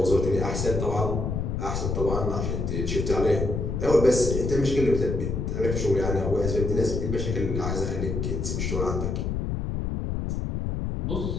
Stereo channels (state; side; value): noise; left; rumble, 2 dB below the sound